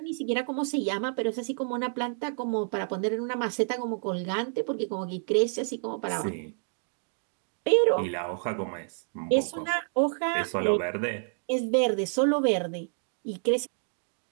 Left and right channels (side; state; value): left; silent; digital silence